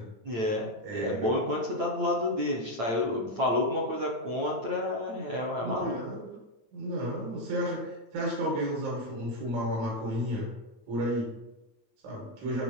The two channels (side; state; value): left; late; 8.9 ms